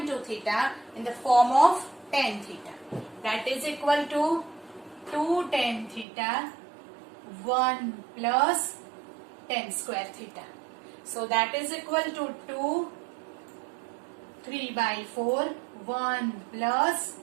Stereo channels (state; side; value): drops out; left; at 6.1 s